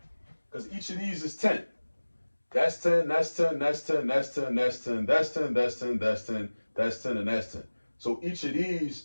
Because each of these is 10. That's 10, that's 10, that's 10, that's 10, that's 10, that's 10, that's 10, that's 10, that's 10, and that's 10. So each of these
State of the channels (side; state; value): both; inverted; correlation -1.00